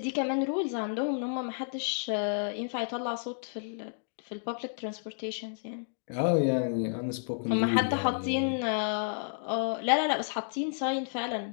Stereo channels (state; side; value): silent; right; digital silence